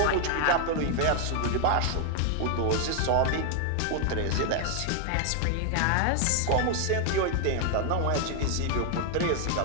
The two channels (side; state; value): both; different; correlation 0.00